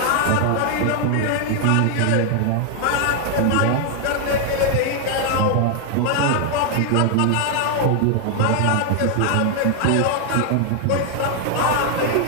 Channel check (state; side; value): different; both; correlation 0.00